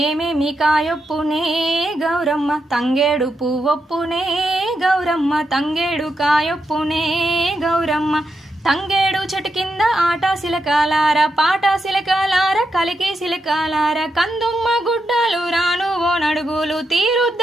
కాయొప్పునే గౌరమ్మ తంగేడు పువ్వొప్పునే గౌరమ్మ తంగేడు కాయొప్పునే గౌరమ్మ తంగేడు చెట్టు కింద ఆట సిలకాలార పాట సిలకాలార కలికి సిలకాలార కందుమ్మ గుడ్డలు రాను ఓ నడుగులు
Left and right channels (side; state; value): both; normal; correlation 0.84